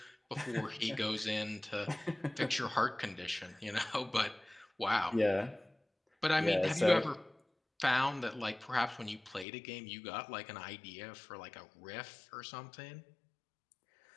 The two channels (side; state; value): right; drops out; at 9.5 s